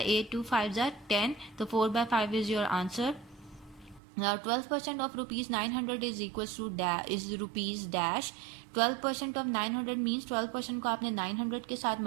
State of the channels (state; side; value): drops out; left; at 4.0 s